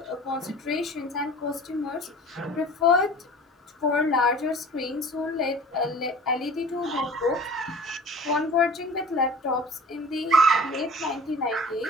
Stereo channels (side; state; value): both; normal; correlation 0.43